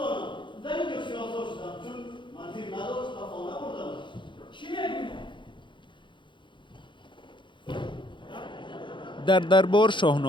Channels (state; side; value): late; right; 0.23 ms